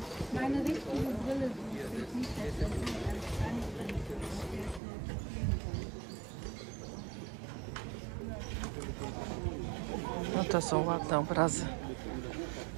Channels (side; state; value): left; drops out; at 4.8 s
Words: Meine richtige Brille. No to są ładne obrazy.